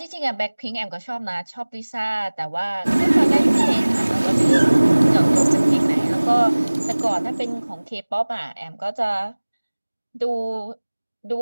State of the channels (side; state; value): both; inverted; correlation -1.00